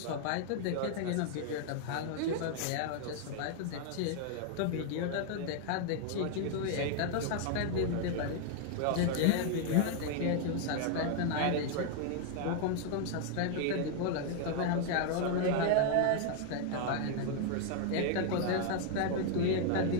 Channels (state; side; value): different; both; correlation 0.00